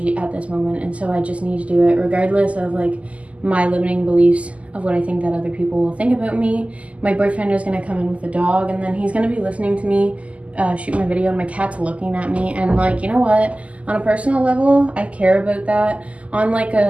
at this moment, and so I just need to do it regardless of my limiting beliefs of what I think that other people will think about me. My boyfriend is going to come in with a dog, and then he's going to be listening to me shoot my video, and my cat's looking at me, and you know what, on a personal level I care about that. On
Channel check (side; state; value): left; late; 0.066 ms